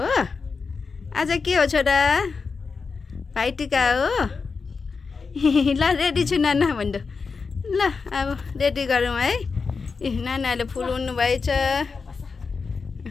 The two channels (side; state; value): right; quieter; 4.9 dB